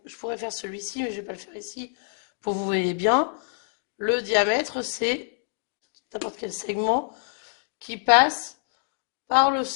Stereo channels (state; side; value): silent; right; digital silence